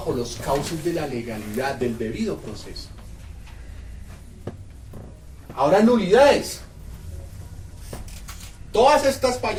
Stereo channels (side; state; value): both; identical; correlation 1.00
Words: los cauces de la legalidad, del debido proceso. Ahora, nulidades. Todas estas